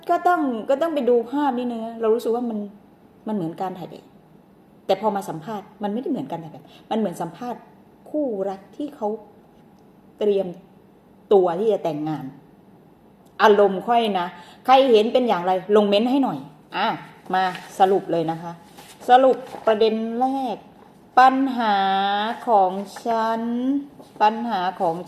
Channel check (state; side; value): identical; both; correlation 1.00